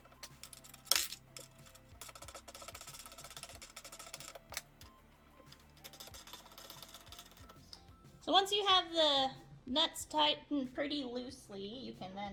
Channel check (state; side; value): identical; both; correlation 1.00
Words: So once you have the nuts tightened pretty loosely, you can